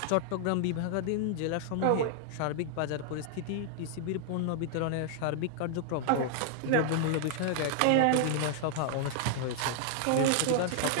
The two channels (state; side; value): different; both; correlation -0.01